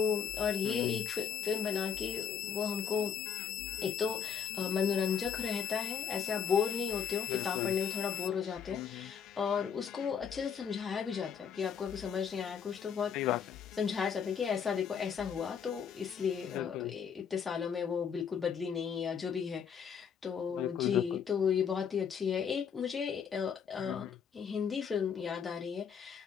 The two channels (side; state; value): right; quieter; 7.2 dB